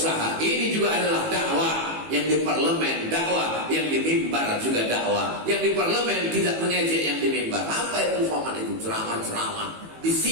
Ini juga adalah dakwah. Yang di parlemen dakwah, yang di mimbar juga dakwah. Yang di parlemen tidak mengejek yang di mimbar. Apa itu Somad itu? Ceramah-ceramah. Di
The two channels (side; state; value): left; late; 18 ms